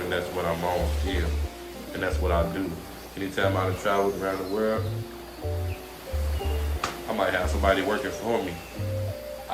and that's what I'm on still. And that's what I do. Anytime I travel around the world, I might have somebody working for me.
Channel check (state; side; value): identical; both; correlation 1.00